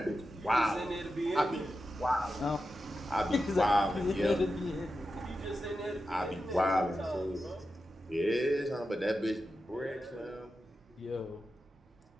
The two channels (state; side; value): normal; both; correlation 0.90